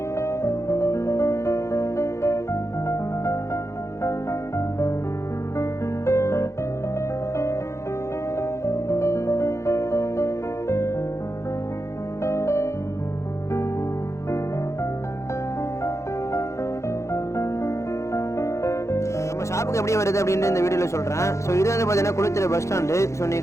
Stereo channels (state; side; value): late; right; 0.14 ms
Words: ஷாப்புக்கு எப்படி வருது அப்படின்னு இந்த வீடியோவில் சொல்கிறேன். ஸோ இது வந்து பார்த்தீங்கன்னா குளித்தலை பஸ் ஸ்டாண்டு. ஸோ